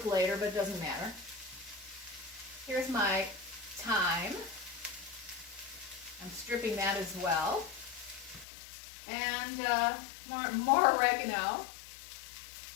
later, but it doesn't matter. Here's my thyme. I'm stripping that as well. And more oregano.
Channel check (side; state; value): right; drops out; at 8.5 s